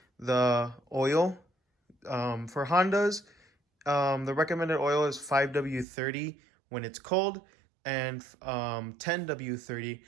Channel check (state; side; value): drops out; left; at 5.9 s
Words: the oil. For Hondas, the recommended oil is 5W30 when it's cold and 10W30